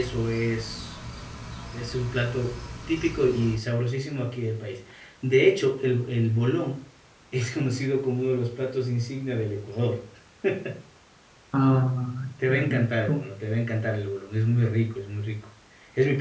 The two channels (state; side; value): identical; both; correlation 1.00